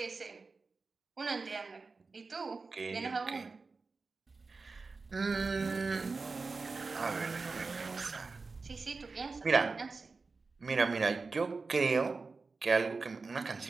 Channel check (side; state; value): left; quieter; 4.2 dB